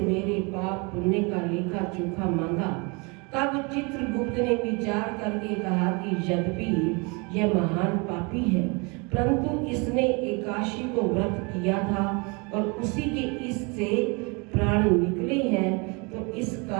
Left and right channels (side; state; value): left; quieter; 30.3 dB